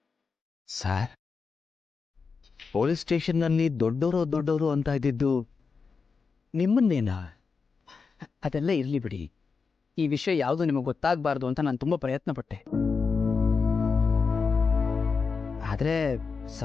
ಸರ್, ಪೊಲೀಸ್ ಸ್ಟೇಷನ್ನಲ್ಲಿ ದೊಡ್ಡವರು ಅಂತ ಇದ್ದಿದ್ದು ನಿಮ್ಮನ್ನೇನಾ? ಅದೆಲ್ಲ ಇರಲಿ ಬಿಡಿ. ಈ ವಿಷಯ ಯಾವುದು ನಿಮಗೆ ಗೊತ್ತಾಗಬಾರ್ದು ಅಂತ ನಾನು ತುಂಬ ಪ್ರಯತ್ನ ಪಟ್ಟೆ. ಆದರೆ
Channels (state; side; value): quieter; right; 5.0 dB